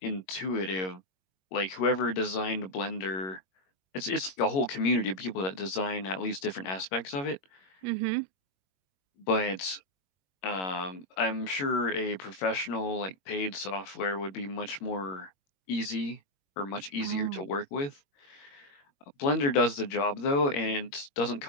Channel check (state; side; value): late; right; 21 ms